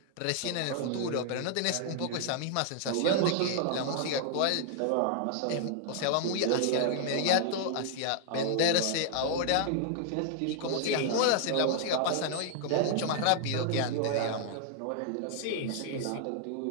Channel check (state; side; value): different; both; correlation 0.00